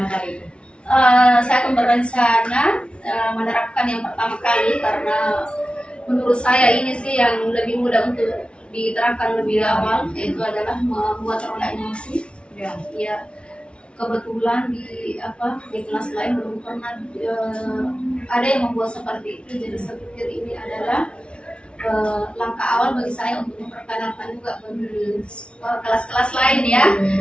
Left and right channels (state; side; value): late; right; 0.058 ms